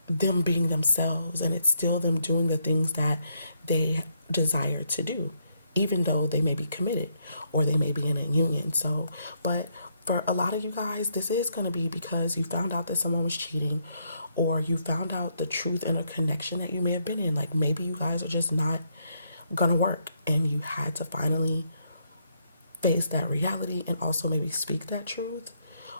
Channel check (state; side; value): inverted; both; correlation -0.75